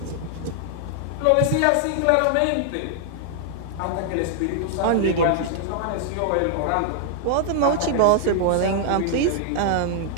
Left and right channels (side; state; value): both; different; correlation -0.01